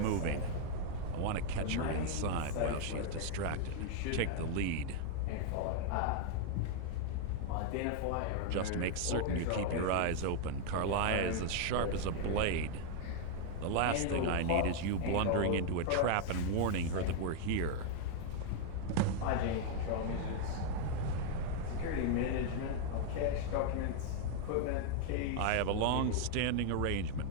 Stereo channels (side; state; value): both; different; correlation 0.00